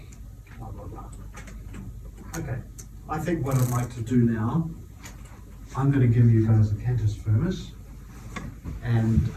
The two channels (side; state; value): both; identical; correlation 1.00